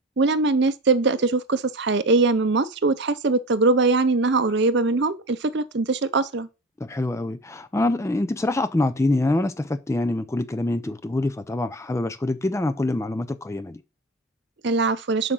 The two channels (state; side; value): normal; both; correlation 0.33